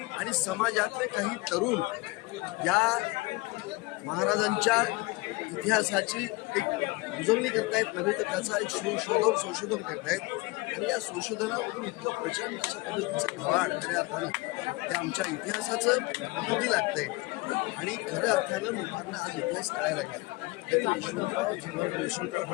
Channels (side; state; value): right; quieter; 23.3 dB